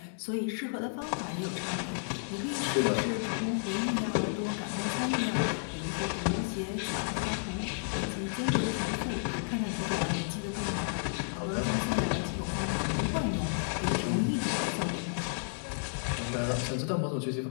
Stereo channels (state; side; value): silent; right; digital silence